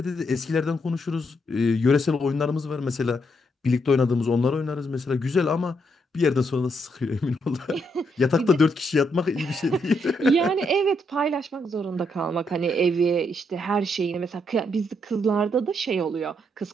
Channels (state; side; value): normal; both; correlation 0.77